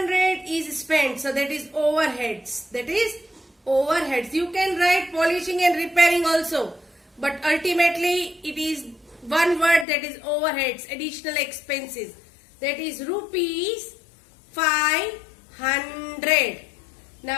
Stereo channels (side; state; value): right; drops out; at 9.9 s